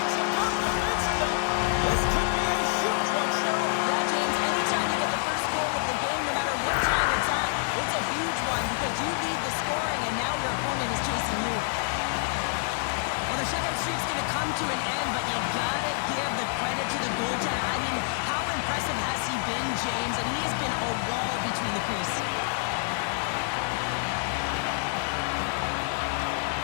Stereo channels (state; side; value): silent; right; 60 dB below the other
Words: To an end, but you gotta give the credit to the goaltender. I mean, how impressive has he been, James? And he has been a wall between the crease.